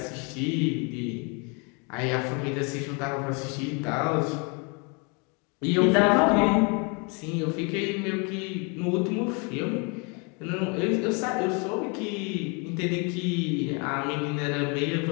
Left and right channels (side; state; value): right; quieter; 33.4 dB